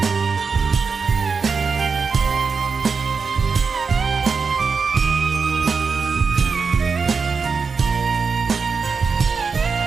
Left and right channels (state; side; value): quieter; left; 5.2 dB